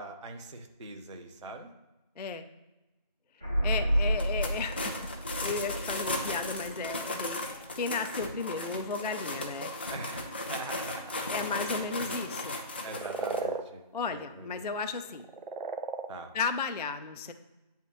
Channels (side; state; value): both; inverted; correlation -0.40